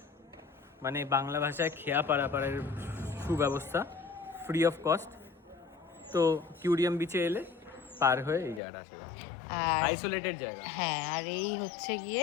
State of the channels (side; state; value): right; drops out; at 8.6 s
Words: মানে বাংলা ভাষায় খেয়া পারাপারের সুব্যবস্থা, ফ্রি অফ কস্ট। তো কিউরিয়াম বিচে এলে পার হয়ে এই জায়গাটা আসা যাবে, আইসোলেটেড জায়গা। হ্যাঁ, আর এই হচ্ছে